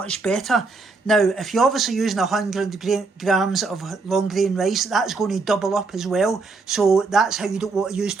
better. Now if you're obviously using 100 grams of long grain rice, that's going to double up as well, so that's how you don't want to use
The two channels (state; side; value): quieter; left; 4.0 dB